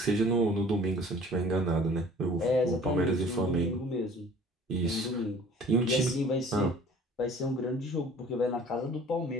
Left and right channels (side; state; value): both; normal; correlation 0.50